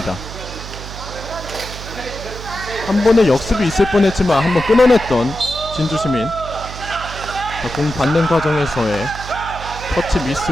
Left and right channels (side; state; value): right; noise; hum, 11 dB below the sound